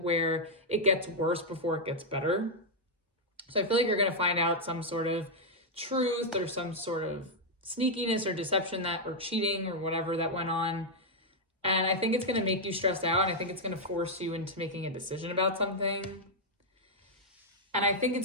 it gets worse before it gets better. So I feel like you're going to find out some sort of truth or some sort of sneakiness or deception or cheating or whatever that went on. And I think it's going to make you stressed out. And I think it's going to force you into making a decision about something. And I think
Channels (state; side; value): normal; both; correlation -0.03